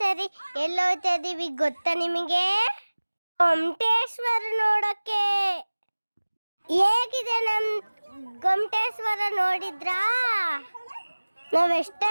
ಎಲ್ಲಿ ಹೋಗ್ತಾ ಇದೀವಿ ಗೊತ್ತಾ ನಿಮಗೆ? ಗೊಮ್ಮಟೇಶ್ವರ ನೋಡಕ್ಕೆ. ಹೇಗಿದೆ ನಮ್ ಗೊಮ್ಮಟೇಶ್ವರ ನೋಡಿದ್ರಾ?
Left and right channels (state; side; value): inverted; both; correlation -1.00